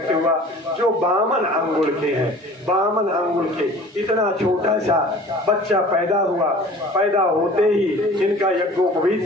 हुआ जो बामन अंगुल के हैं। बामन अंगुल के इतना छोटा सा बच्चा पैदा हुआ, पैदा होते ही इनका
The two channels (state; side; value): normal; both; correlation 0.45